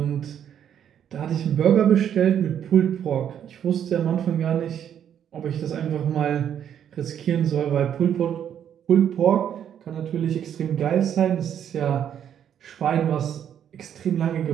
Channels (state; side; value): quieter; left; 9.3 dB